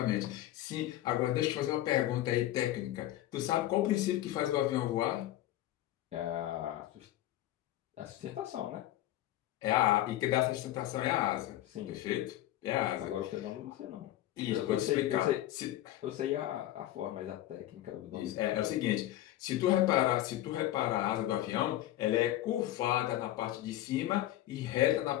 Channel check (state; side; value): quieter; right; 14.3 dB